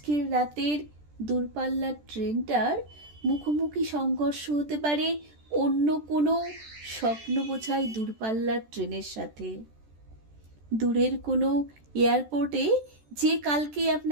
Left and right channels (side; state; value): left; late; 14 ms